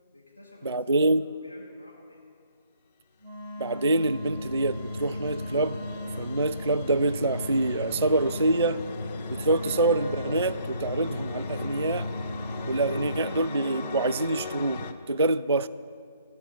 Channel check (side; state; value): both; inverted; correlation -0.64